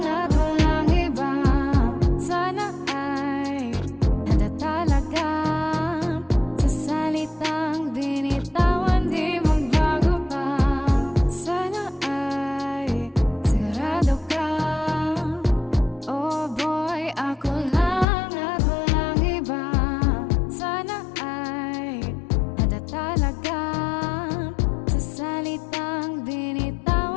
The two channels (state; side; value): drops out; right; at 18.1 s